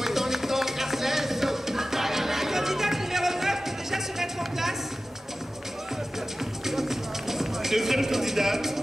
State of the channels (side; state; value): both; normal; correlation 0.94